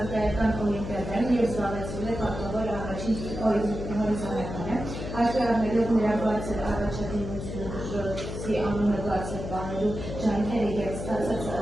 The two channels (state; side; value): noise; left; hum, 7 dB below the sound